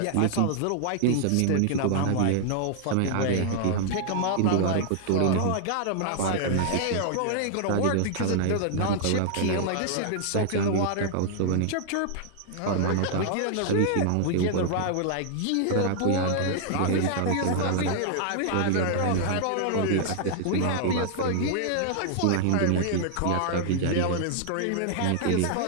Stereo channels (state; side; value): different; both; correlation 0.00